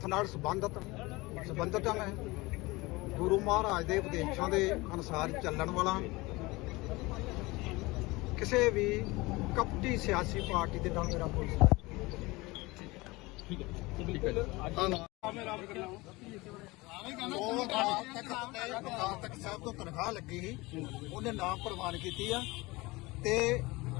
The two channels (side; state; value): right; quieter; 22.4 dB